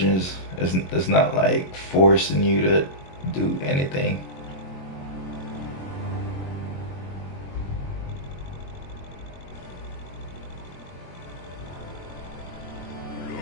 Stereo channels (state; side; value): late; right; 22 ms